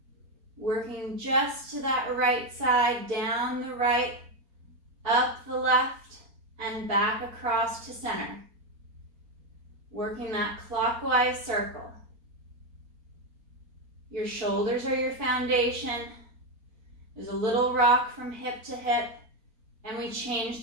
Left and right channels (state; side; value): late; left; 4.3 ms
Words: Working just to that right side, down the right, up the left, and back across to center. Working that clockwise circle. Your shoulders are your foundation. There's a little rock from hip to hip, and we change